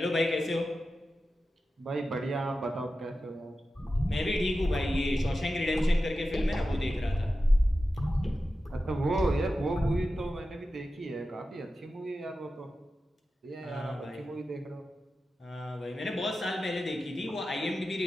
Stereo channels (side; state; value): both; normal; correlation 0.93